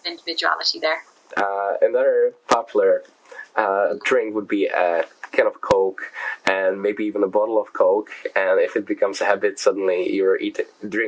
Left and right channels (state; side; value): identical; both; correlation 1.00